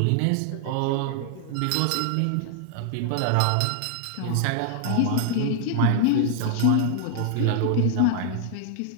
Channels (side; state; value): both; different; correlation 0.00